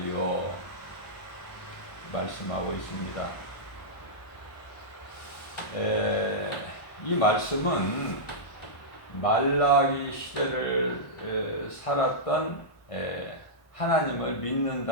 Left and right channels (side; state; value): right; late; 1.2 ms